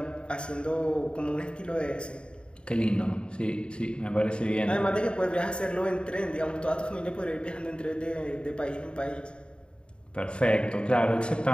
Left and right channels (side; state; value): right; late; 0.053 ms